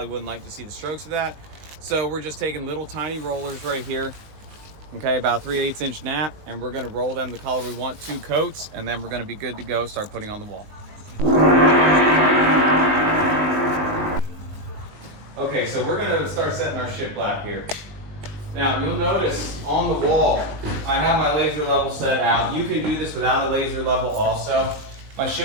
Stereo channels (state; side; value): late; left; 19 ms